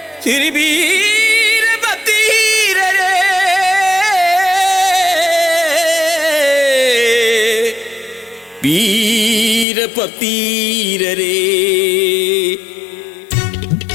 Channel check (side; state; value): right; drops out; at 9.7 s